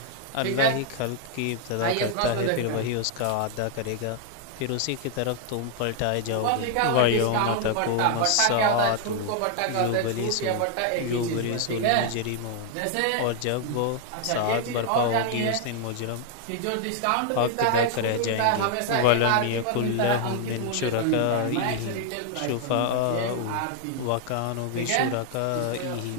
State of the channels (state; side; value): different; both; correlation 0.00